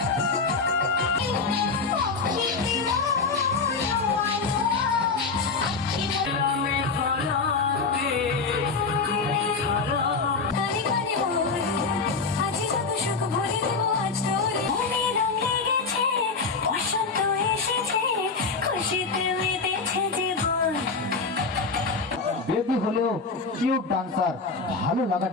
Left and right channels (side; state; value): right; quieter; 4.4 dB